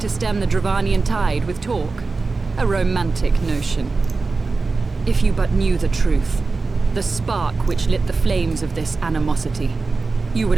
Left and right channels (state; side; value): quieter; left; 4.0 dB